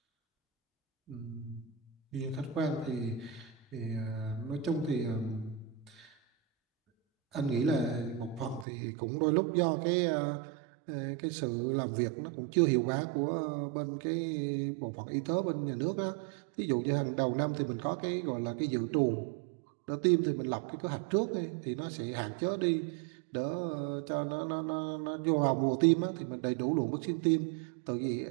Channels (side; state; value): left; drops out; at 8.7 s